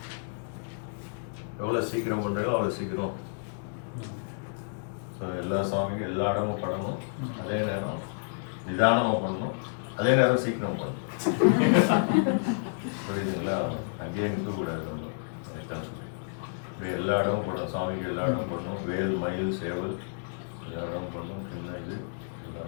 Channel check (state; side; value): silent; right; digital silence